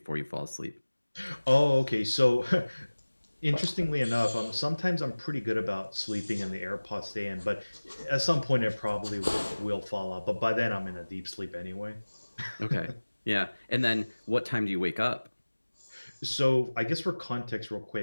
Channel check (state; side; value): inverted; both; correlation -1.00